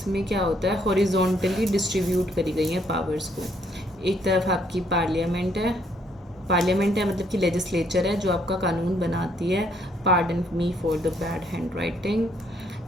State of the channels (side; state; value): both; normal; correlation 0.69